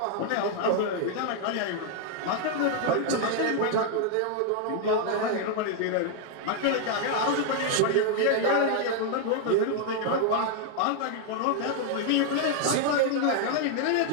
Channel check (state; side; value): different; both; correlation 0.00